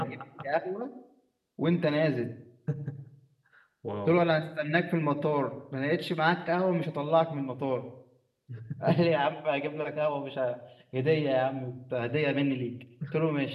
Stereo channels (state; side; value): identical; both; correlation 1.00